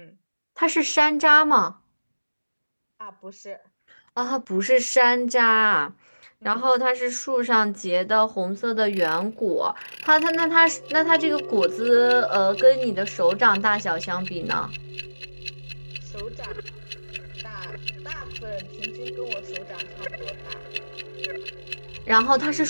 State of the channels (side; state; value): both; inverted; correlation -1.00